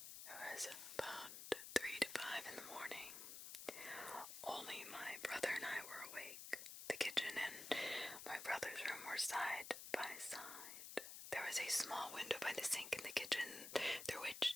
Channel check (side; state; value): left; noise; hiss, 9 dB below the sound